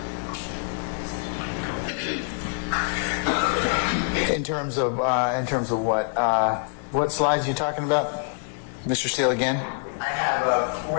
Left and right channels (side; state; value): right; silent; digital silence